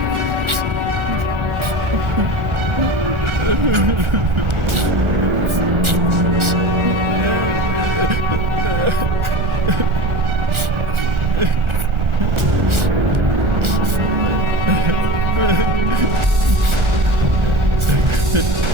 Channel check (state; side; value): late; left; 1.4 ms